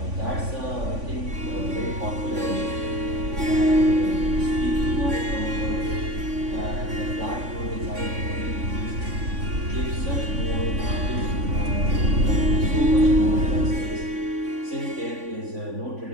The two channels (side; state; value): left; late; 3.5 ms